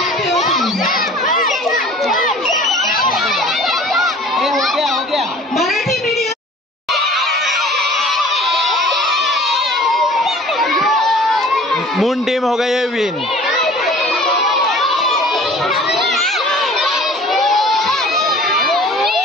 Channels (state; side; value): normal; both; correlation 0.47